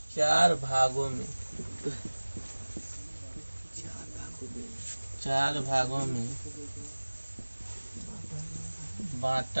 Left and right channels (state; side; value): inverted; both; correlation -1.00